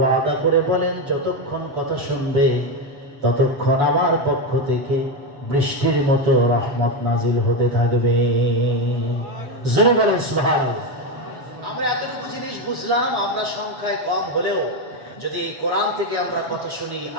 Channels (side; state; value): left; late; 7.0 ms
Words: করে বলেন, যতক্ষণ কথা শুনবে ততক্ষণ আমার পক্ষ থেকে বৃষ্টির মতো রহমত নাজিল হতে থাকবে। জোরে বলেন সুবহানাল্লাহ। আমরা এতটুকু জিনিস বুঝলাম, আমরা সংখ্যায় কম হলেও যদি এই কোরআন থেকে আমরা কথা শুনি,